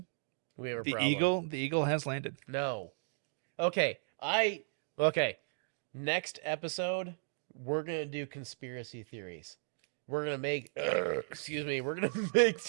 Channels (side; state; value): left; silent; digital silence